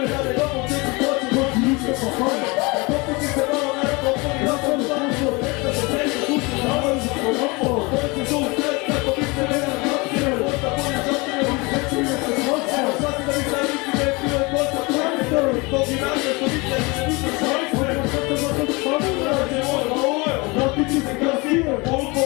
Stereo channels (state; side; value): quieter; right; 26.3 dB